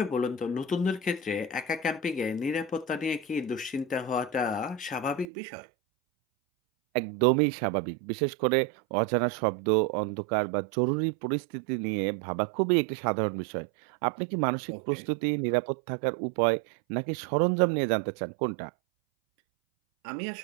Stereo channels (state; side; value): drops out; left; at 5.2 s